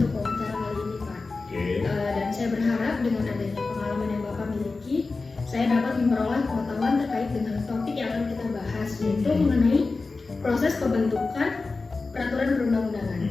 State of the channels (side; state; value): right; quieter; 3.8 dB